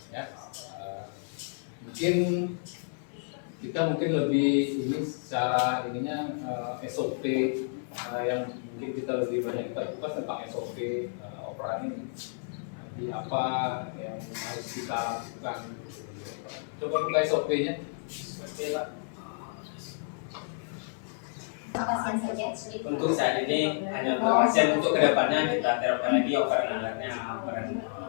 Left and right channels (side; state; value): right; silent; 57 dB below the other